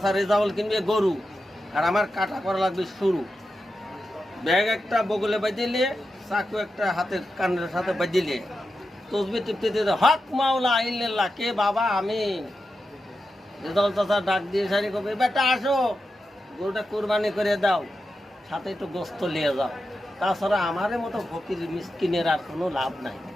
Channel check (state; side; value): normal; both; correlation 0.89